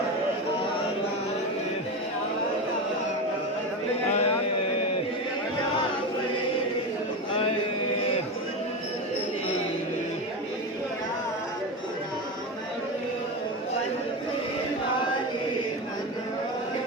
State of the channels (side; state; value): both; normal; correlation 0.19